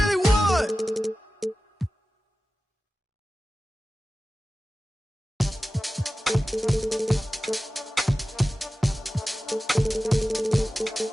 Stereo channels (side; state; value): both; normal; correlation 0.95